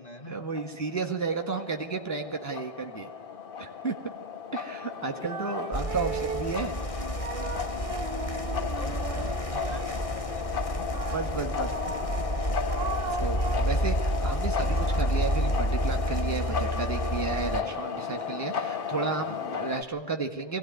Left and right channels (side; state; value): right; late; 1.6 ms